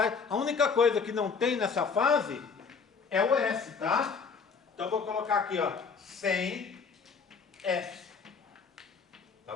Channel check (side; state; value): right; quieter; 5.4 dB